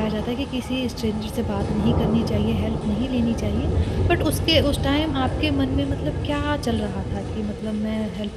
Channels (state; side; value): identical; both; correlation 1.00